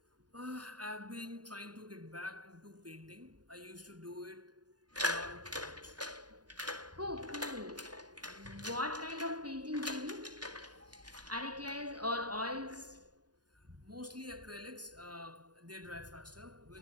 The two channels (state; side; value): late; left; 0.69 ms